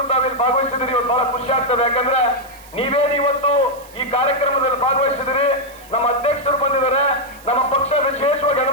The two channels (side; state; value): right; noise; hiss, 23 dB below the sound